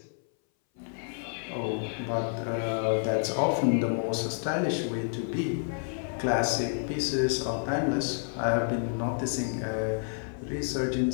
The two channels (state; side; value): silent; right; 58 dB below the other